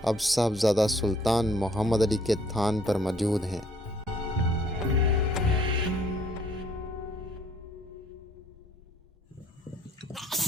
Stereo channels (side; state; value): both; normal; correlation 0.62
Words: اب صاحبزادہ سلطان محمد علی کے تھان پر موجود ہیں۔